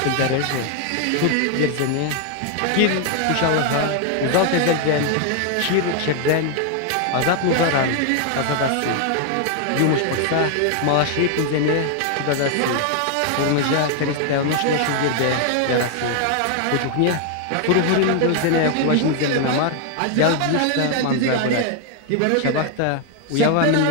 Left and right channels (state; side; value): different; both; correlation 0.00